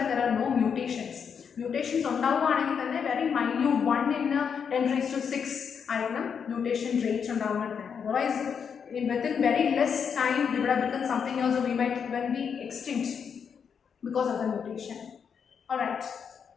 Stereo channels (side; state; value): right; quieter; 6.9 dB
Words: there are no mutations. Mutations ഉണ്ടാവുകയാണെങ്കിൽ തന്നെ very minute 1/10⁶ ആയിരിക്കണം mutation rate ഉണ്ടാവുന്നത്. Otherwise within very less time we would have become something else, or we might even be extinct because of the mutation. Alright,